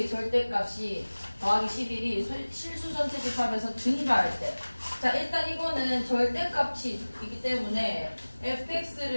절대값이 더하기 11이 실수 전체 집합에서 증가할 때. 자, 일단 이거는 절대값이 있기 때문에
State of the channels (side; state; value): both; inverted; correlation -1.00